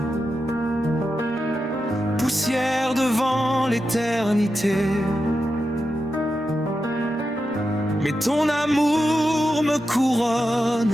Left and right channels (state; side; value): normal; both; correlation 0.89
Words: poussière devant l'éternité. Mais ton amour me